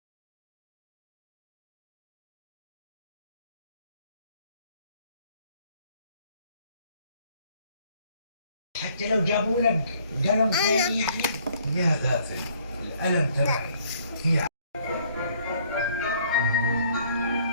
حتى لو جابوا لك قلم ثاني يعني. يا غافل، القلم تبعي هي.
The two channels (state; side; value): inverted; both; correlation -0.62